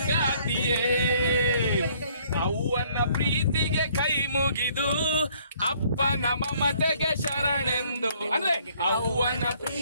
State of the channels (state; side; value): inverted; both; correlation -0.62